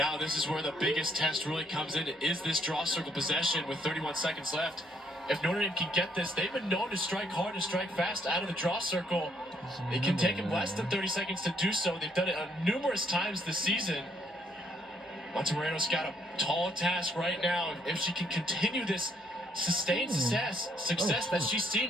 this is where the biggest test really comes in. Is this draw circle possession with 31 seconds left? If Notre Dame can get this, they've been known to strike hard and strike fast out of the draw circle. It can take them less than 30 seconds to do so. They've done it numerous times this season. Monterrano's got a tall task right now. If she can continue this sustained success that she's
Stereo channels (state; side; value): normal; both; correlation 0.70